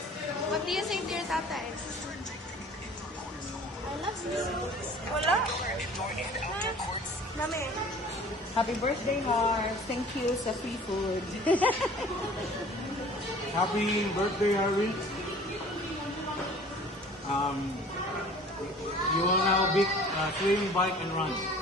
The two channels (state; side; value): normal; both; correlation 0.47